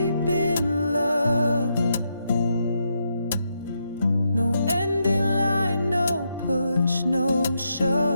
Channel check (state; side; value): inverted; both; correlation -0.81